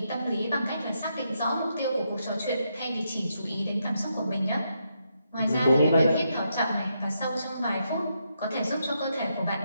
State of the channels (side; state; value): both; inverted; correlation -0.80